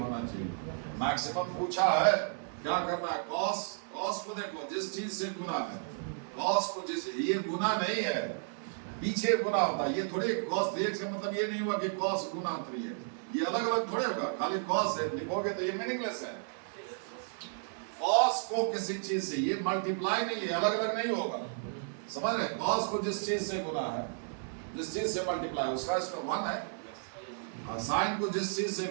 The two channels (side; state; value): left; silent; 56 dB below the other